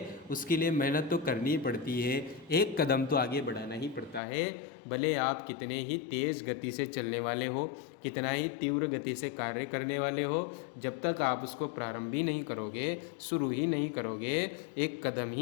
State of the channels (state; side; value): drops out; right; at 4.2 s